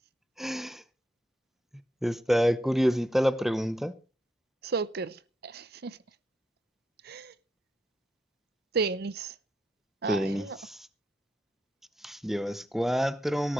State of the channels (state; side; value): normal; both; correlation 0.82